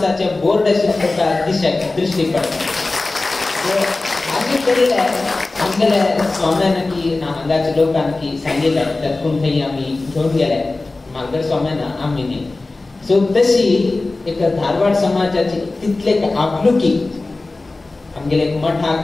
बोर्ड दृष्टी पडतात. आमगेल्या स्वाम्यानकी ना हांगाच्या लोकांकी सांगितलं त्यातून काही आम्ही घेऊन गेले मागल्या स्वाम्याना आम्ही. सो तशी एक धारवाड समाजाची तितले आपुलकी आमगेले एक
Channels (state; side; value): quieter; right; 3.3 dB